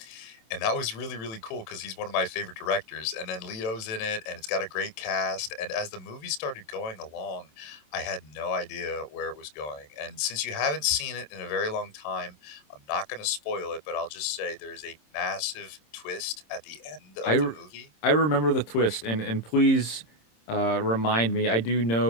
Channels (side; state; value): right; late; 26 ms